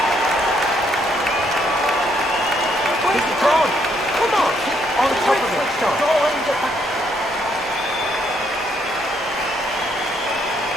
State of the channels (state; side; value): normal; both; correlation 0.72